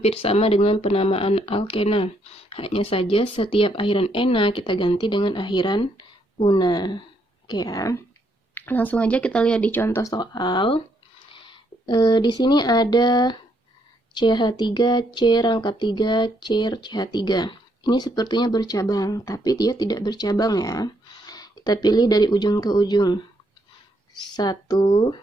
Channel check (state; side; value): normal; both; correlation 0.73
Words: sama dengan penamaan alkena. Hanya saja setiap akhiran ena kita ganti dengan akhiran una. Oke ya. Langsung aja kita lihat di contoh soal. Di sini ada CH3, C rangkap 3, C CH3. Ini sepertinya bercabang, tapi dia tidak bercabang ya. Kita pilih dari ujung ke ujung. 1,